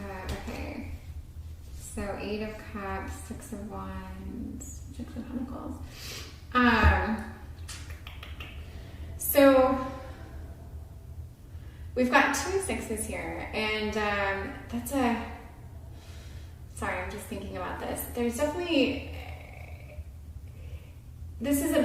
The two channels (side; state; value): both; identical; correlation 1.00